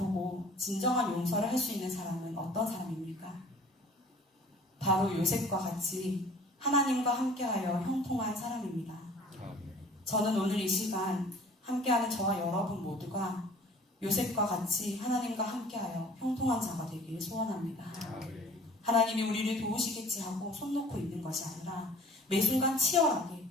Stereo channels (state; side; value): normal; both; correlation 0.49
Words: 진정한 용서를 할 수 있는 사람은 어떤 사람입니까? 바로 요셉과 같이 하나님과 함께하여 형통한 사람입니다. 저는 오늘 이 시간 함께하는 저와 여러분 모두가 요셉과 같이 하나님과 함께하여 형통한 자가 되기를 소원합니다. 하나님이 우리를 도우시겠지 하고 손 놓고 있는 것이 아니라 매 순간 치열하게